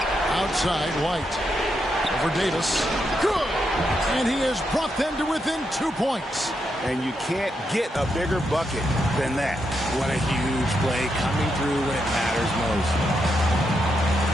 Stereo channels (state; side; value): normal; both; correlation 0.82